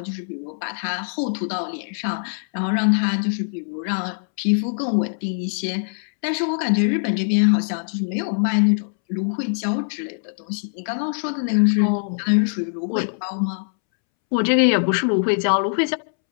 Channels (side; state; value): right; silent; 64 dB below the other